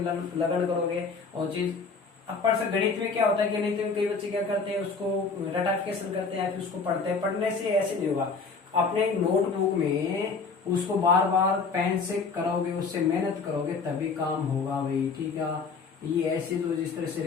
करोगे और चीज अब पर से गणित में क्या होता है, गणित में कई बच्चे क्या करते हैं, उसको रटाफिकेशन करते हैं, फिर उसको पढ़ते हैं। पढ़ने से ऐसे नहीं होगा, अपने नोटबुक में उसको बार बार पेन से करोगे, उससे मेहनत करोगे तभी काम होगा भाई, ठीक है। ये ऐसे तो जिस तरह से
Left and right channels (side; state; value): right; quieter; 4.7 dB